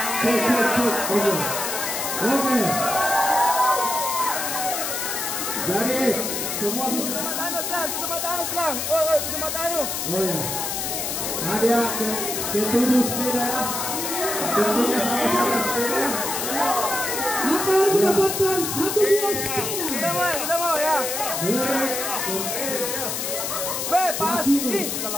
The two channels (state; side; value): noise; left; hiss, 2 dB below the sound